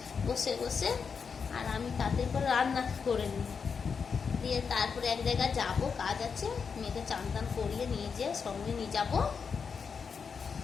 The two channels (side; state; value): right; quieter; 5.9 dB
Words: বসে বসে, আর আমি তাদের করে রান্না করে নিই। দিয়ে তারপরে এক জায়গায় যাবো, কাজ আছে, মেয়েকে চান টান করিয়ে নিয়ে যেয়ে সঙ্গে নিয়ে যাবো।